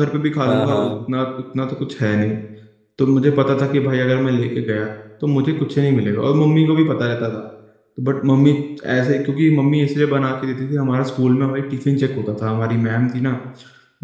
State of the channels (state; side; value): identical; both; correlation 1.00